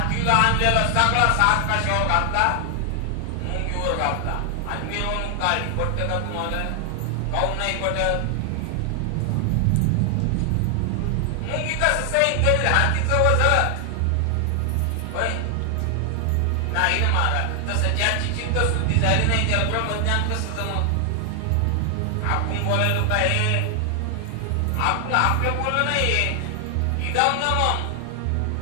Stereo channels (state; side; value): different; both; correlation 0.00